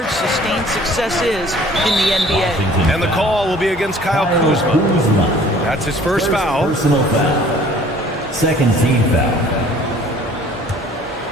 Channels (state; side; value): normal; both; correlation 0.52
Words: sustained success is in the NBA. And the call will be against Kyle Kuzma. That's his first foul. Personal foul. Second team foul.